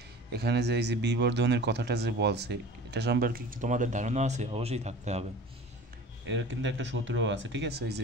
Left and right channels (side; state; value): both; normal; correlation 0.40